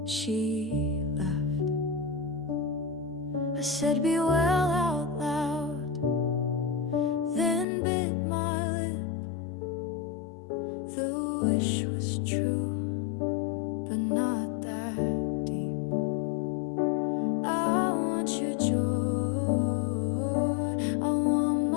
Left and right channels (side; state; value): right; drops out; at 7.7 s